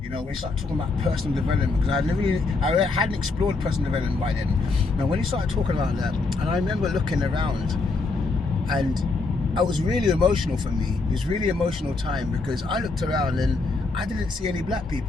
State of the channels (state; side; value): quieter; right; 3.8 dB